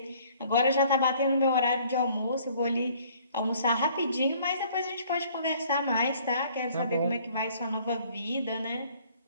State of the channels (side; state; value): both; inverted; correlation -0.57